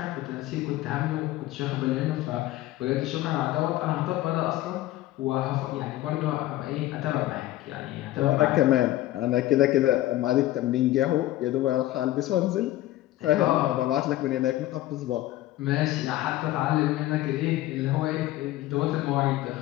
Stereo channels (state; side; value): quieter; right; 15.5 dB